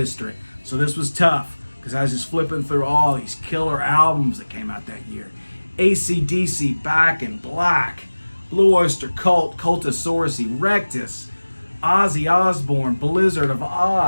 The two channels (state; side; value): inverted; both; correlation -1.00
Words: So this was tough because I was just flipping through all these killer albums that came out that year. AC/DC, Back in Black, Blue Oyster Cult, Cultosaurus Erectus, Ozzy Osbourne, Blizzard of